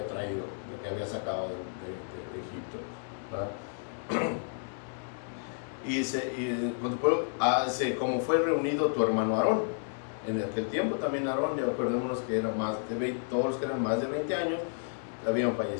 traído, el que había sacado de Egipto, ¿verdad? Y dice, como fue reunido tu hermano Aarón. En aquel tiempo también Aarón, ya acordémonos que era más de 20, todos los que eran más de 20 años habían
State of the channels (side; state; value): right; silent; digital silence